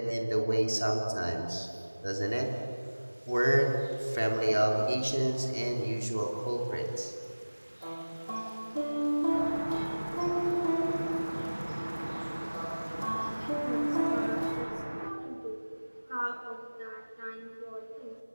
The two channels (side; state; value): both; inverted; correlation -1.00